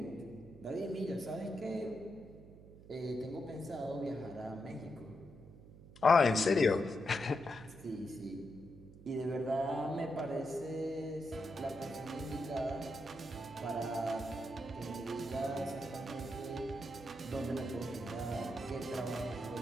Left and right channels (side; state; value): right; noise; hum, 18 dB below the sound